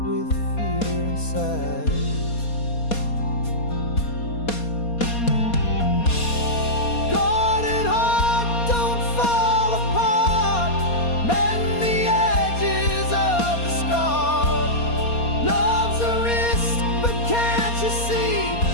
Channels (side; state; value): right; late; 4.2 ms